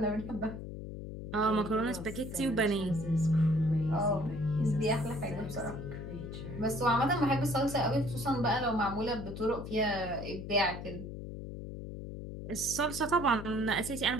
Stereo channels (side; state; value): left; noise; hum, 9 dB below the sound